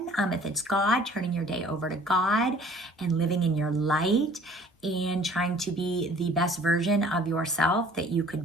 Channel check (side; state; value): both; normal; correlation 0.52